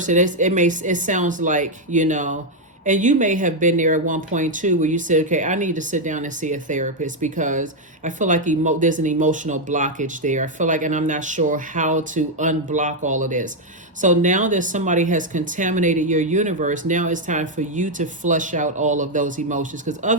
it sounds like, you know, and you may have been there at one point too, where you said, okay, I need to sit down and see a therapist because I feel like there's an emotional blockage there. I feel like, and I'm not sure how to unblock all of this. So now that somebody has contaminated your universe, now it's time for you to flush out all of those emotions, because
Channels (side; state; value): both; normal; correlation 0.01